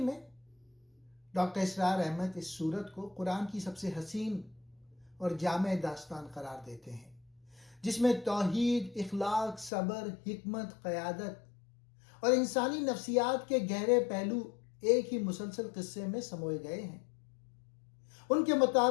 ڈاکٹر اسرار احمد اس سورت کو قرآن کی سب سے حسین اور جامع داستان قرار دیتے ہیں، جس میں توحید، اخلاق، صبر، حکمت، قیادت اور انسانی نفسیات کے گہرے پہلو ایک ہی مسلسل قصے میں سموئے گئے ہیں۔ ان کے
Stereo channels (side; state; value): right; drops out; at 9.7 s